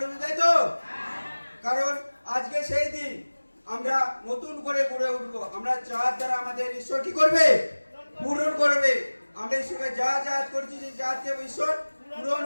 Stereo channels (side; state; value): both; inverted; correlation -1.00